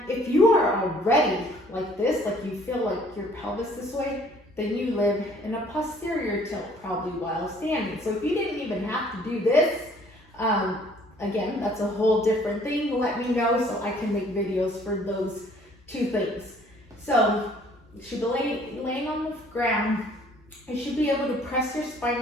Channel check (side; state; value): both; normal; correlation 0.57